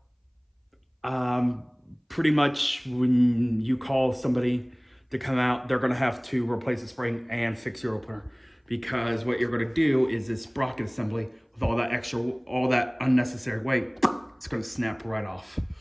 pretty much when you call somebody to come out, they're going to have to replace the spring and fix your opener, because what you're going to do is this sprocket assembly with all that unnecessary weight, it's going to snap right off.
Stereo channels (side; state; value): both; identical; correlation 1.00